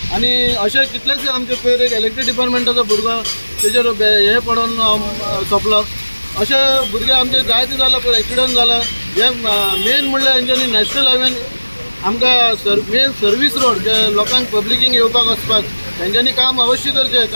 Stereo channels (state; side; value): inverted; both; correlation -1.00